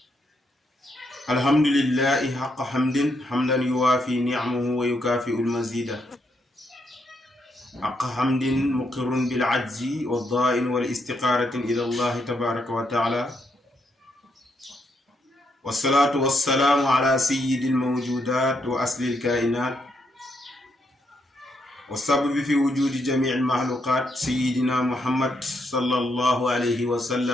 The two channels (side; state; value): both; normal; correlation 0.78